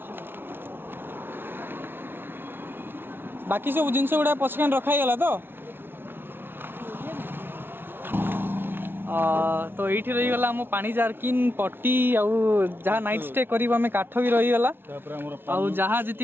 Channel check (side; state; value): left; late; 0.11 ms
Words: बाकी सब जिनस गुड़ा पछकान रखाई गला तो ये रहीगला आम पानी जारकिन पट्टी जहाँ नाइट स्टे कर काठ भी रहीगला जहाँ